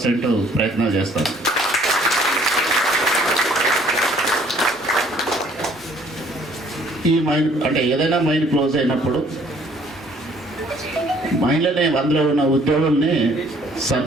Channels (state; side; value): normal; both; correlation 0.59